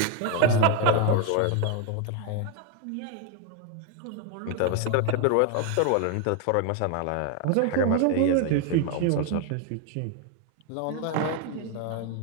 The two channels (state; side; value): different; both; correlation 0.01